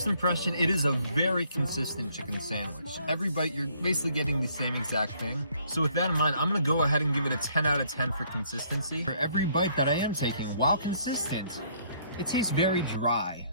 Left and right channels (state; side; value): inverted; both; correlation -0.64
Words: impression, it is a very consistent chicken sandwich. Every bite, you're basically getting the same exact thing. So with that in mind, I'm gonna go ahead and give it a 10 out of 10 for consistency. For every bite that I am taking, while consistent, it tastes very dry.